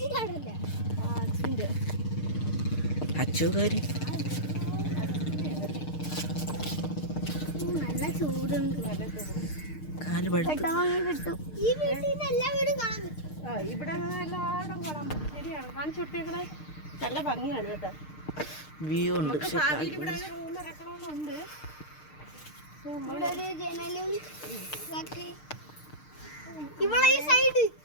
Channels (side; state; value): right; late; 6.6 ms